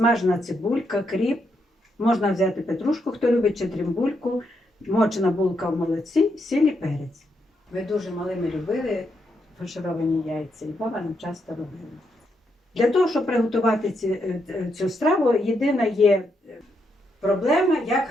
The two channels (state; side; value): normal; both; correlation 0.80